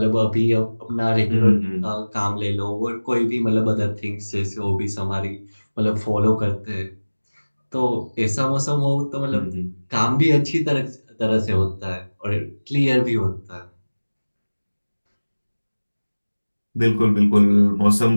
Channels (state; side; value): inverted; both; correlation -1.00